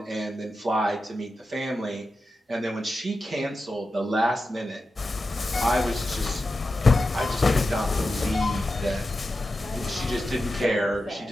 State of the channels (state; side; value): normal; both; correlation 0.91